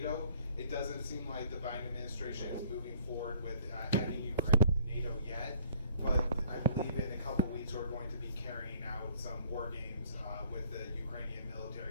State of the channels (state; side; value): inverted; both; correlation -0.56